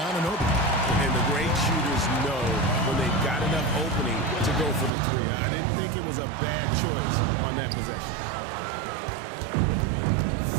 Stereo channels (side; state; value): left; drops out; at 4.9 s